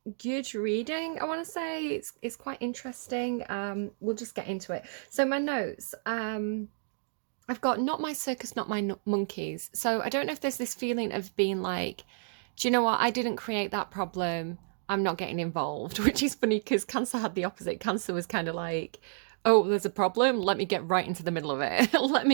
good reading, I want to say. It's quite interesting. We'll just get into it. So my notes, I've got not my circus, not my monkeys. So I don't know if there's this feeling of being like, do you know what, I didn't create that problem, I'm not getting involved, which is funny because Cancer had the opposite. Cancer was kind of like, oh, there's a problem, let me get right into the middle of it. Let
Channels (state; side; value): silent; left; digital silence